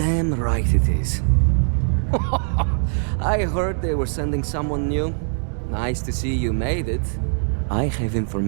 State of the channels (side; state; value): left; silent; digital silence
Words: right it is. I heard they were sending someone new. Nice to see you made it. I have